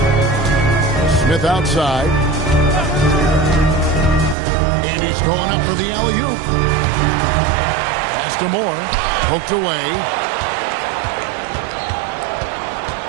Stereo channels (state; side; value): drops out; left; at 4.4 s